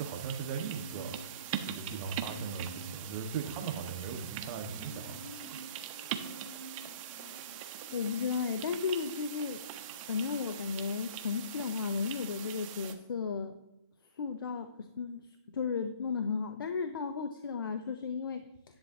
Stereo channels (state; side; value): inverted; both; correlation -0.50